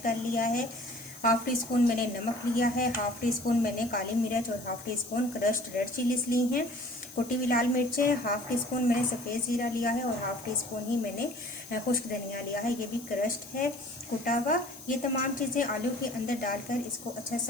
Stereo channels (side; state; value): left; noise; hiss, 16 dB below the sound